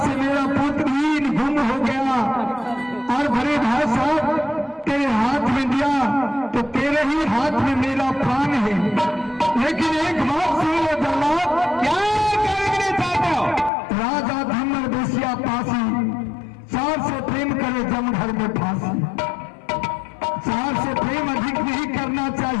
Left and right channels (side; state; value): right; drops out; at 13.7 s